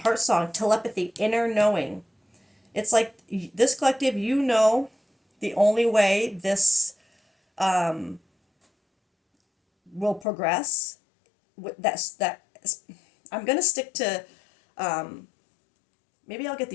song, telepathy, inner knowing. It's like this collective, you know, the only way this will progress. I'm gonna stick to. Maybe I'll get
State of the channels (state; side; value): drops out; right; at 10.2 s